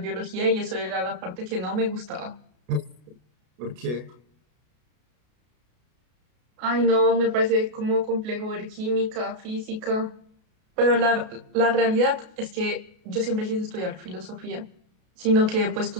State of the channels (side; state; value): left; late; 33 ms